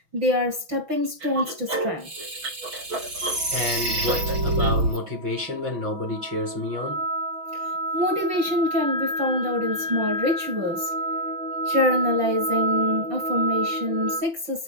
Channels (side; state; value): left; late; 6.2 ms